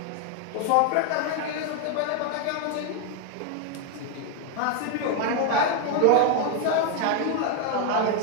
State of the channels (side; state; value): both; different; correlation 0.00